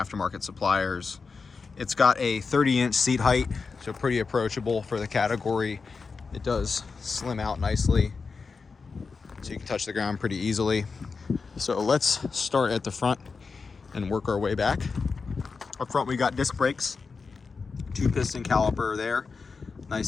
suppliers. It's got a 30-inch seat height, so pretty approachable for the category. It does slim out nicely, so you can touch the ground pretty easily. So let's start at the front and work our way back. Up front, we got disc brakes, 2-piston caliper there,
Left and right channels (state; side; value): quieter; right; 4.8 dB